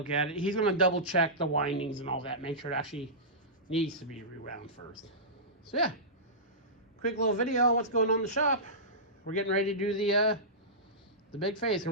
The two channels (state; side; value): normal; both; correlation -0.18